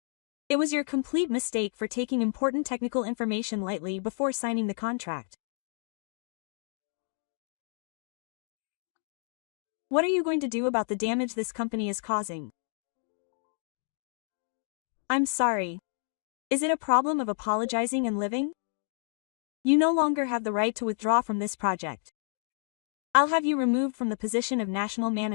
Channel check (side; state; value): right; silent; 58 dB below the other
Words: It was your complete mistake for taking important technical information lightly before signing the contract. What are you going to do about the damage this company is causing? I'm sorry. Is it a problem of apologizing and living? You no longer have the right to withdraw from this project. I'll have you removed from the position of national